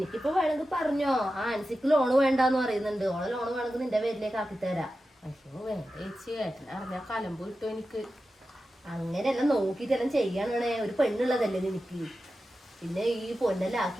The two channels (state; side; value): normal; both; correlation 0.92